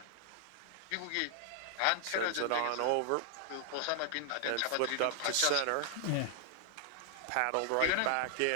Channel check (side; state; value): both; different; correlation 0.00